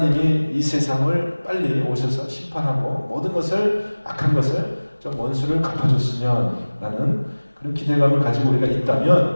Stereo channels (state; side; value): inverted; both; correlation -1.00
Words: 이 세상을 빨리 오셔서 심판하고 모든 것을 악한 것을 좀 원수를 갚아줬으면 라는 그런 기대감을 가지고 우리가